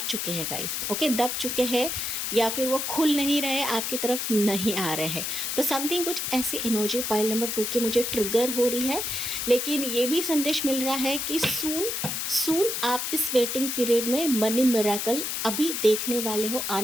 चुके हैं गाइस, ओके, दब चुके हैं या फिर वो खुल नहीं रहे, आपकी तरफ नहीं आ रहे हैं। तो समथिंग कुछ ऐसी एनर्जी पाइल नंबर 2 की मुझे ट्रिगर हो रही है, लेकिन ये भी संदेश मिल रहा है कि सून आप इस वेटिंग पीरियड में मनी मिरेकल अभी देखने वाले हो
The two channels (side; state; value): left; noise; hiss, 2 dB below the sound